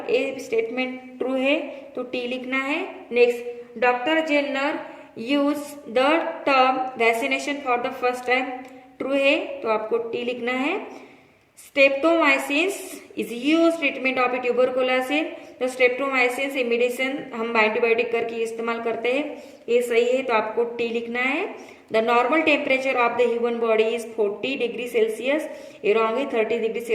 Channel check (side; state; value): both; identical; correlation 1.00